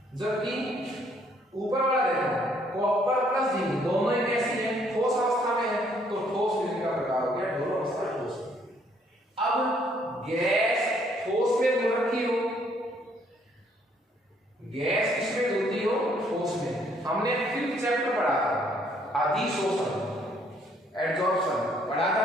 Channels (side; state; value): both; normal; correlation 0.66